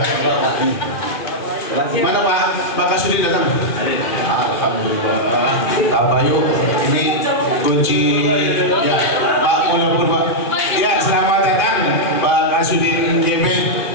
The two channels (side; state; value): right; late; 2.5 ms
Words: Mana Pak Kasudin datang? Alhamdulillah. Pak Bayu, ini kunci ya Pak Munar Purba. Ya, selamat datang Pak Kasudin JB.